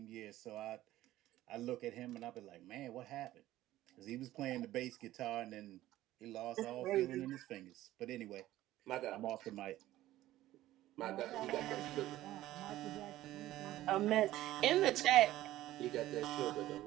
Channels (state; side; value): quieter; left; 15.0 dB